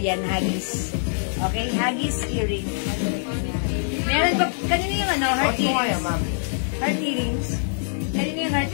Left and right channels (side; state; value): right; silent; digital silence